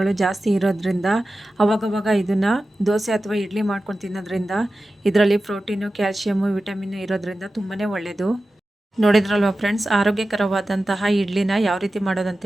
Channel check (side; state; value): both; normal; correlation 0.94